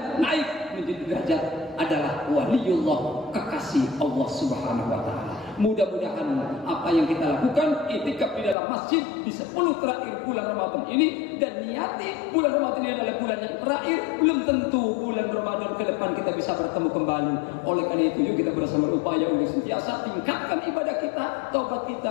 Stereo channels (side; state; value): right; drops out; at 8.6 s